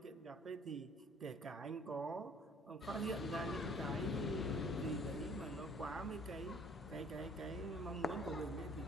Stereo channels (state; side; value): normal; both; correlation 0.56